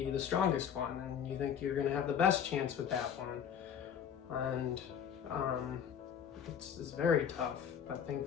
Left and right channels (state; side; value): quieter; right; 8.2 dB